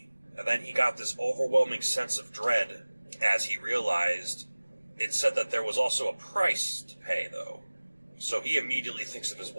And then he got this overwhelming sense of dread as he realized it said that there was also a price to pay, though. So he immediately thinks of his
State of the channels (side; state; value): both; inverted; correlation -1.00